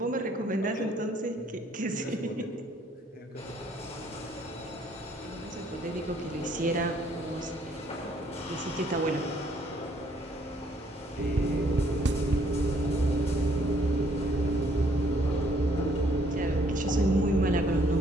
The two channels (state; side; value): normal; both; correlation 0.65